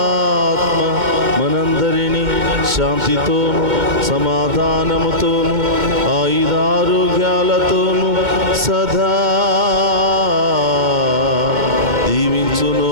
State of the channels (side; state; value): left; late; 2.2 ms